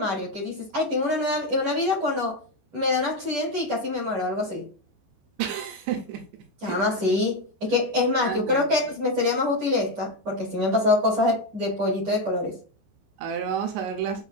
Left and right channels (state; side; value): late; left; 14 ms